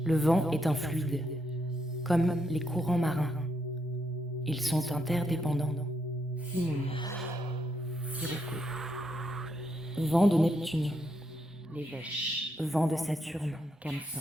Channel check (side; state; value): both; normal; correlation 0.79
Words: Le vent est un fluide, comme les courants marins. Ils sont interdépendants. Simoun, Sirocco. Vent de Neptune, les Vèches. Vent de Saturne,